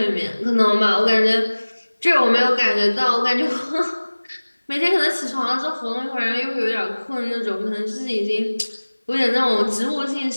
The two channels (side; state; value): both; inverted; correlation -1.00